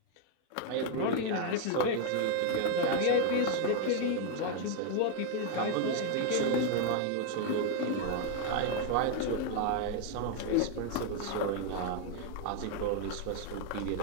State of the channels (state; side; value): different; both; correlation 0.01